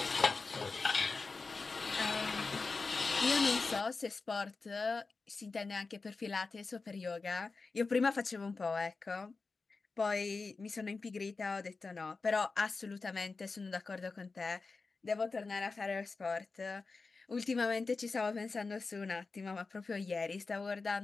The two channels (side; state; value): right; quieter; 4.1 dB